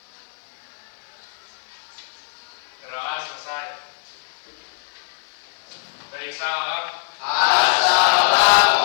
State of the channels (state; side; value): silent; right; digital silence